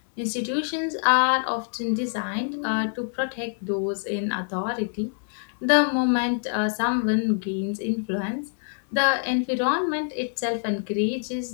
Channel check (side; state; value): right; silent; 61 dB below the other